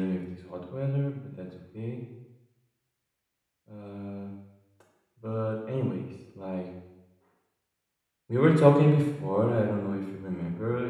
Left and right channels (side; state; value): both; identical; correlation 1.00